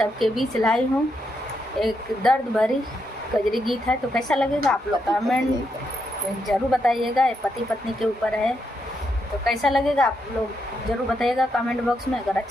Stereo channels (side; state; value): both; normal; correlation 0.81